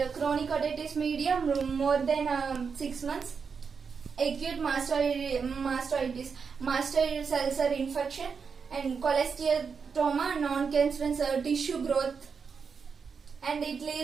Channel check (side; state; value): left; quieter; 5.8 dB